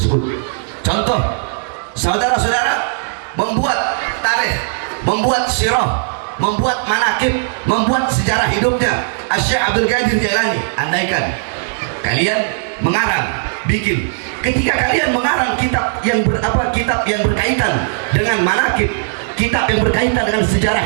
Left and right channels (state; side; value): silent; left; digital silence